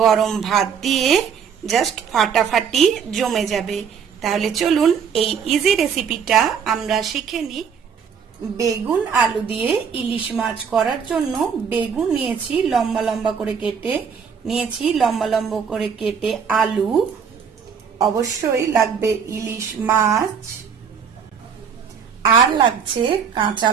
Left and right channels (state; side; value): quieter; left; 6.9 dB